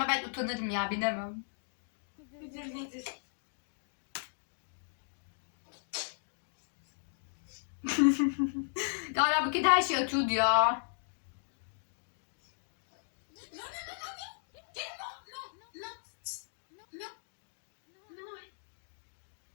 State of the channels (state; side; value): silent; right; digital silence